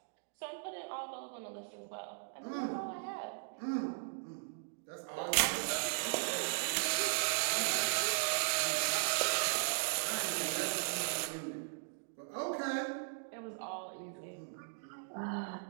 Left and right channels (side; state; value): left; silent; digital silence